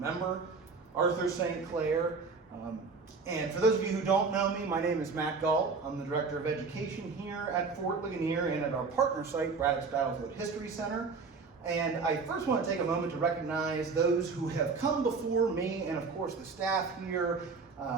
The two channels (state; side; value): quieter; left; 4.6 dB